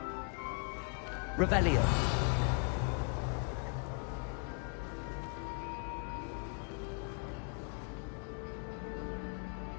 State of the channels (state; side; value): quieter; right; 39.0 dB